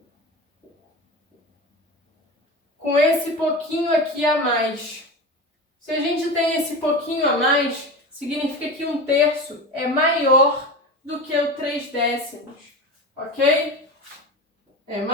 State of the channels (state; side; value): normal; both; correlation 0.27